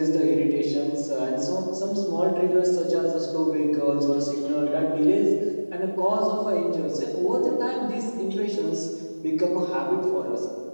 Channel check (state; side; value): inverted; both; correlation -1.00